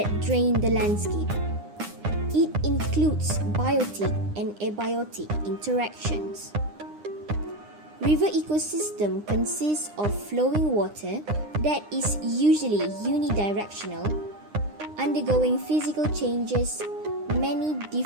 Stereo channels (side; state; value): left; late; 9.8 ms